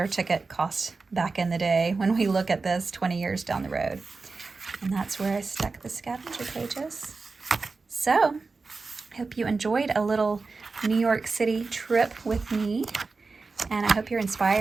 ticket cost back in the day when we look at this 20 years down the road. And that's where I stuck the scavenger pages. So I hope you enjoyed a little New York City trip with me, and I hope you're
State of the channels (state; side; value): quieter; left; 4.1 dB